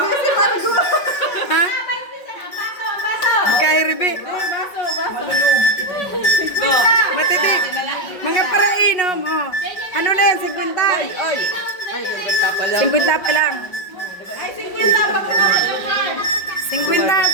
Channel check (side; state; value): right; late; 5.5 ms